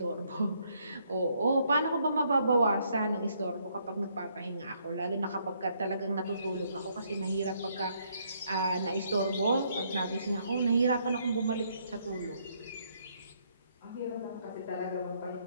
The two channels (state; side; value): inverted; both; correlation -0.71